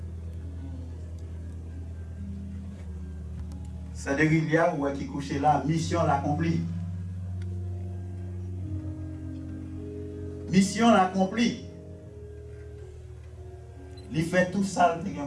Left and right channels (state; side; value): identical; both; correlation 1.00